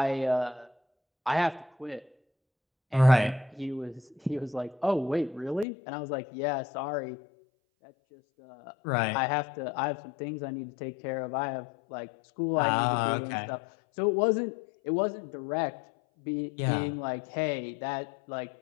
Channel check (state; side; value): drops out; right; at 5.7 s